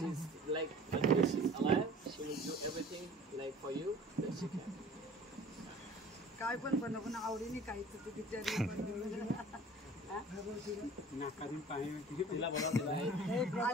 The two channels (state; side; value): normal; both; correlation 0.46